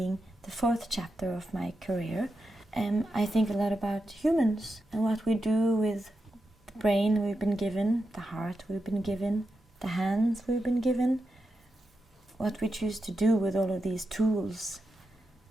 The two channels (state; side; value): normal; both; correlation 0.88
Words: the fourth chapter of my career, I think a lot about humans and what we do with the brain we've been given, the heart we've been given, the hands we've been given, what we choose to do with all of these tools.